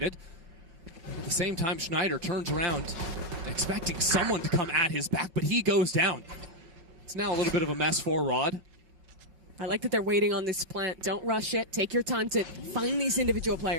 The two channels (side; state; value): left; late; 5.8 ms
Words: At the same time, Schneider turns around, expecting someone to come at his back, but he goes down. It's now a little bit of a mess for Rod. I like that they're waiting on this plant. Don't rush it. Take your time to find these individual